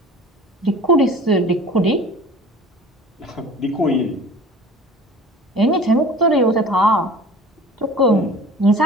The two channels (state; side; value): normal; both; correlation 0.43